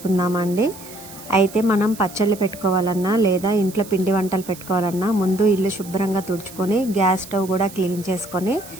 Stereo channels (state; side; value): noise; right; hiss, 17 dB below the sound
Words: అయితే మనం పచ్చళ్ళు పెట్టుకోవాలన్నా లేదా ఇంట్లో పిండి వంటలు పెట్టుకోవాలన్నా ముందు ఇల్లు శుభ్రంగా తుడుచుకొని గ్యాస్ స్టవ్ కూడా క్లీన్ చేసుకొని